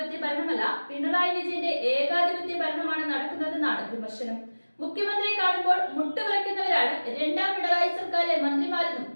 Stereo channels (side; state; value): both; inverted; correlation -1.00